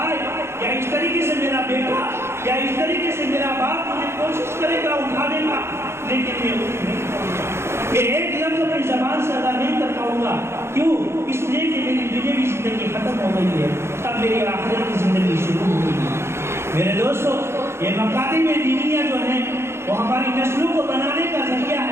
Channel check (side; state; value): left; late; 0.12 ms